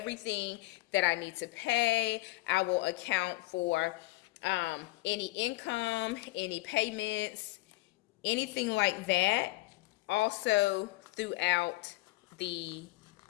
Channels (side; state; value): right; quieter; 20.3 dB